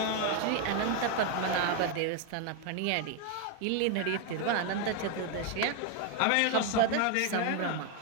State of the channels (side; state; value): both; different; correlation 0.01